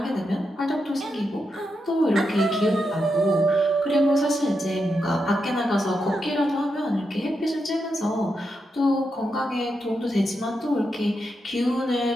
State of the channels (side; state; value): both; normal; correlation 0.85